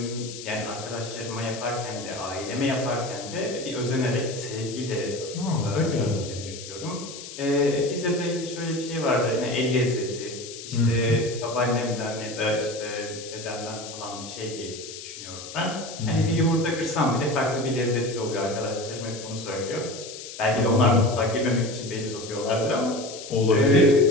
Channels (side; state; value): left; noise; hiss, 12 dB below the sound